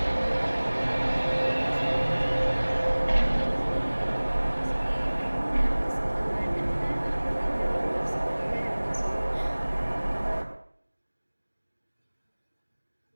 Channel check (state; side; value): inverted; both; correlation -1.00